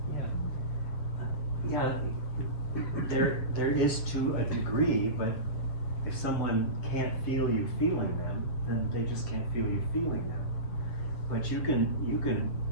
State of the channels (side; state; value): right; late; 7.8 ms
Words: There is to a degree, but if someone can't feel you feeling them, then they just can't feel you feeling them. But you can